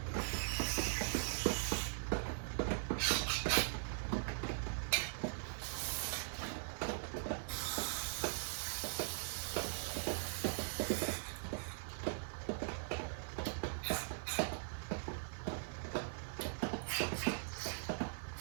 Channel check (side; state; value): left; silent; digital silence